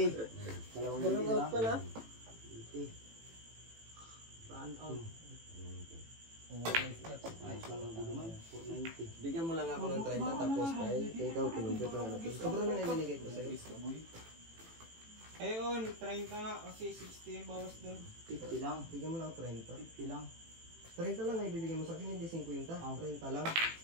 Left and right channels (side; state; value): left; late; 18 ms